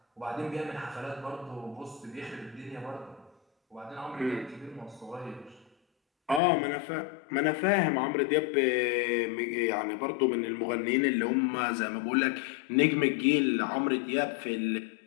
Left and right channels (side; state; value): right; drops out; at 6.4 s